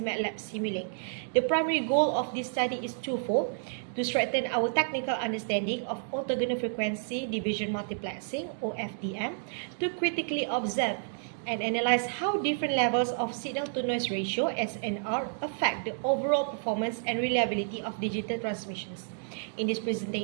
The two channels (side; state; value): left; silent; digital silence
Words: MATLAB Simulink. The primary goal of this study is twofold: to strengthen our technical understanding of orthogonal frequency division multiplexing (Ofdm), to critically observe and analyze how different levels of signal-to-noise ratio (SNR) affect the overall performance and reliability of digital transmissions. In this